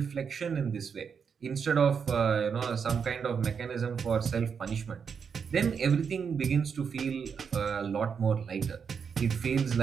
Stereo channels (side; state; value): left; quieter; 6.5 dB